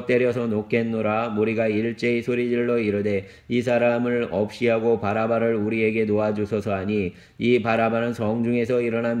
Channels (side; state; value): both; identical; correlation 1.00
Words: 때려서 놓겠노라. 무리가 일제히 소리질러 이르되 이 사람을 없이하고 바라바를 우리에게 놓아주소서 하니 이 바라바는 성중에서